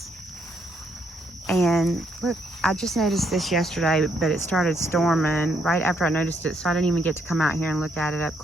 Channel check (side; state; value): both; normal; correlation 0.73